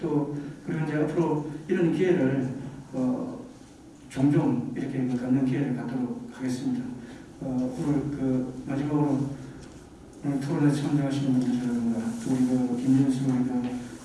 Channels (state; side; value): identical; both; correlation 1.00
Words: 그리고 이제 앞으로 이런 기회를 종종 이렇게 갖는 기회를 갖도록 하겠습니다. 오늘 마지막으로 오늘 토론에 참여하시는 분들이라든가 또 우리 김윤수